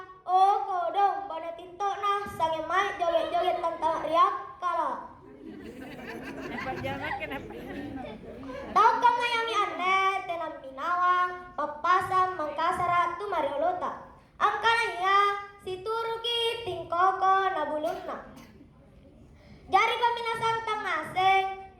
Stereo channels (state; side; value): identical; both; correlation 1.00